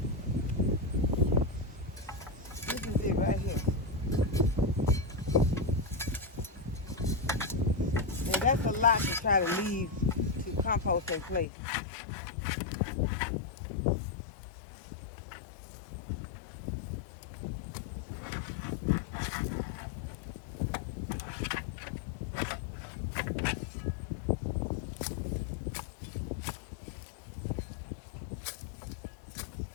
This is it right here. And that's a lot to try to leave to compost in place.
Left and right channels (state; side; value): drops out; right; at 11.5 s